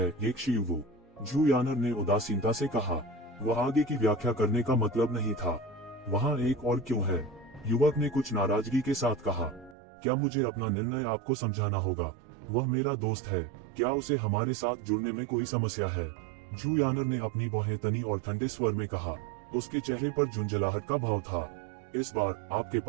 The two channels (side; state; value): left; drops out; at 9.8 s